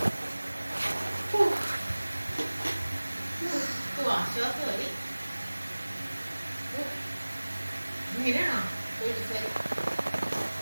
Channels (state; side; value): inverted; both; correlation -1.00